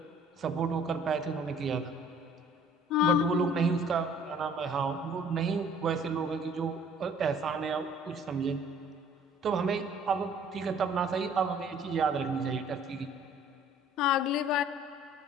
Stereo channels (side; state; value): both; normal; correlation 0.55